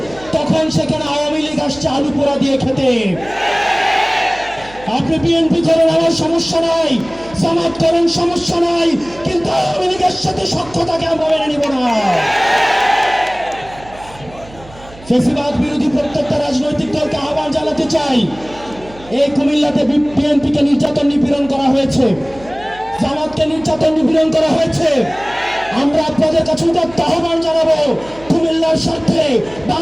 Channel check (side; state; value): right; noise; hum, 20 dB below the sound